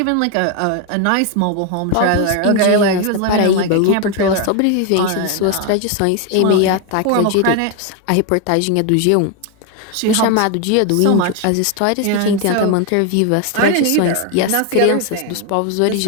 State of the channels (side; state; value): both; different; correlation 0.01